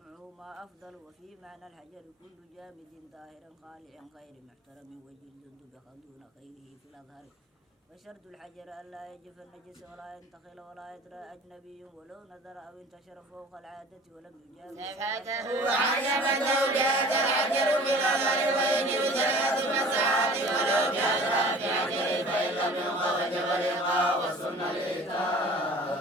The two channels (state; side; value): normal; both; correlation 0.45